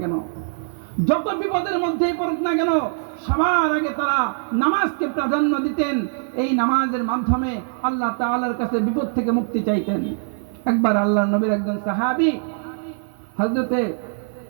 কেন, সবার আগে তারা নামাজকে প্রাধান্য দিতেন। এই নামাজের মাধ্যমে আল্লাহ তাআলার কাছে বিপদ থেকে মুক্তি চাইতেন। একবার আল্লাহর নবীর একজন সাহাবী হযরতে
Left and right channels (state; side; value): silent; left; 63 dB below the other